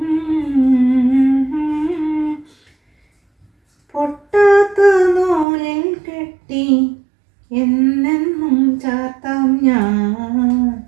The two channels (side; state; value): left; drops out; at 5.5 s